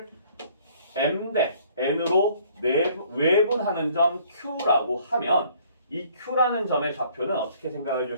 M 대 N으로 외분하는 점 Q라고 하면 이 Q라는 점의 좌표는 어떻게 생각해 줄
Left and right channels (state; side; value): inverted; both; correlation -0.59